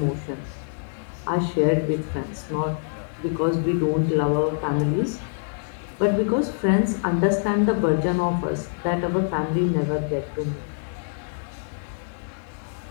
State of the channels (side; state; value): right; silent; 62 dB below the other